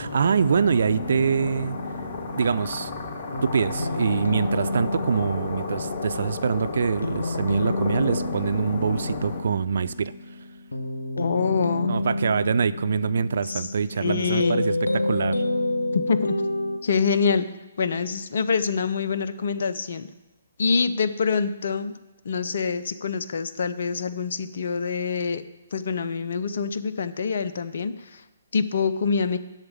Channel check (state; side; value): inverted; both; correlation -0.76